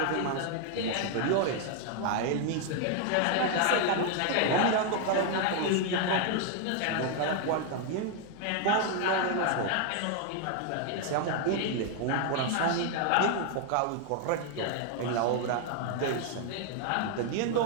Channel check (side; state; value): both; different; correlation 0.00